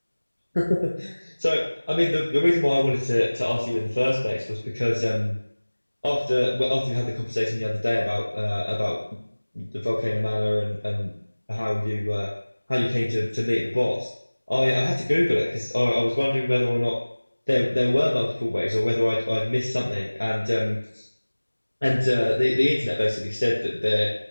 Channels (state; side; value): inverted; both; correlation -1.00